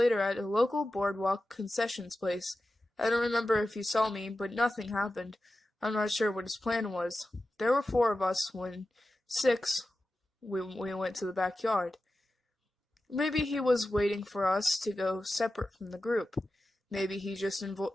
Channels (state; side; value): normal; both; correlation 0.93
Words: at a local boardwalk concessions place. I don't remember if he saw me, but nothing happened. I'm not sure what his plan was. There were 4 of us when 6, we went to the backyard. Maybe he was waiting for us to go separate from the group. Maybe he just